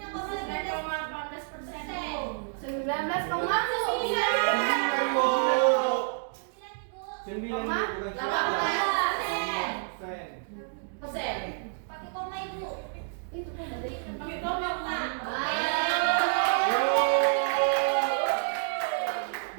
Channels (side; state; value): left; silent; digital silence